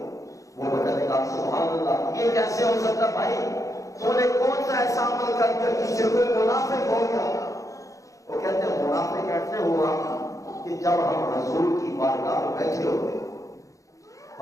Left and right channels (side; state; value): right; late; 0.16 ms